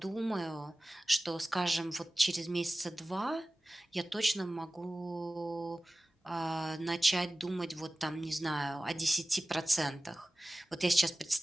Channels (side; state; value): both; normal; correlation 0.97